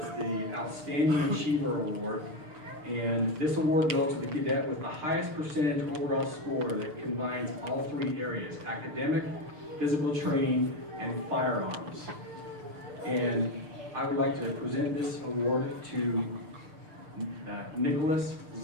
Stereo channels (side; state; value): left; late; 6.7 ms